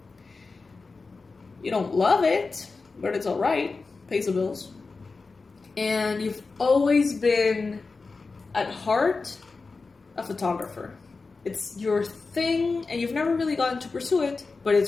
You don't love it, but it's all right. Pays the bills. And you've always been, at heart, a photographer. It's your thing, and you've never really gotten to pursue it, but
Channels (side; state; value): right; quieter; 4.1 dB